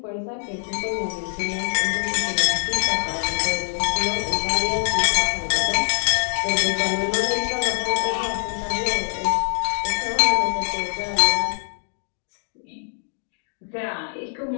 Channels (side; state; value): right; silent; 63 dB below the other